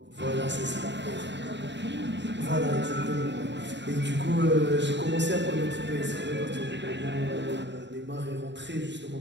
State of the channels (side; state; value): left; late; 0.52 ms